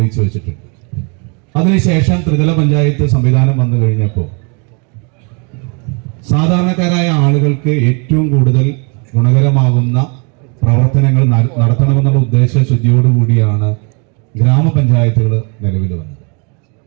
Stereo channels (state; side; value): quieter; left; 34.4 dB